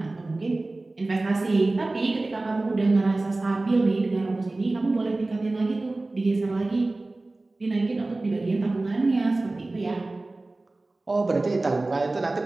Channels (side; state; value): left; quieter; 3.0 dB